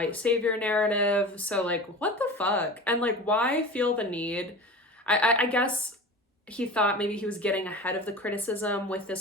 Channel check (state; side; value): normal; both; correlation 0.34